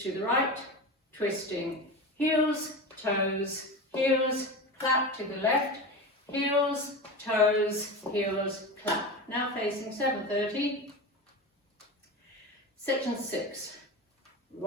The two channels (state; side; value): normal; both; correlation 0.25